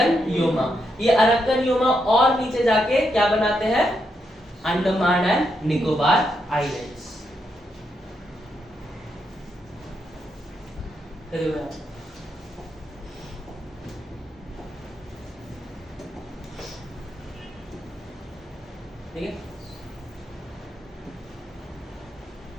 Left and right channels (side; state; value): both; normal; correlation 0.81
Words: योमा। ये अरक्कन योमा और नीचे जाके क्या बनाते हैं? Andaman and Nicobar islands. ठीक है।